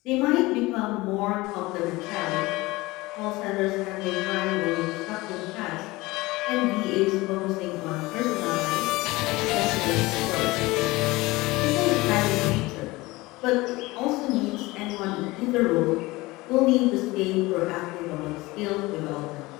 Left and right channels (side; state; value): right; quieter; 21.0 dB